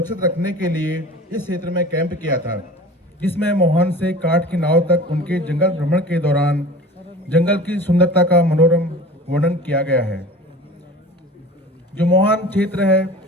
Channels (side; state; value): both; normal; correlation 0.40